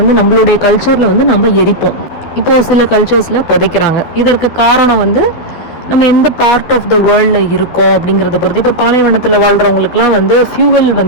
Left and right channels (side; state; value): right; late; 12 ms